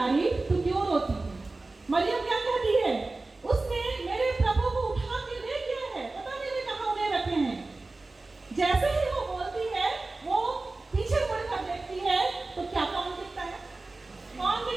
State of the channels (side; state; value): left; quieter; 3.3 dB